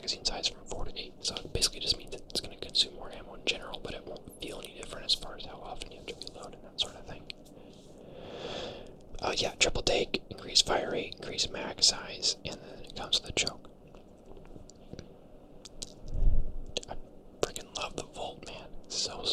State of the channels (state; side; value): identical; both; correlation 1.00